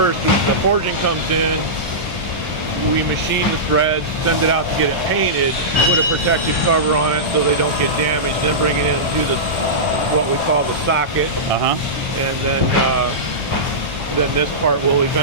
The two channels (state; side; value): normal; both; correlation -0.16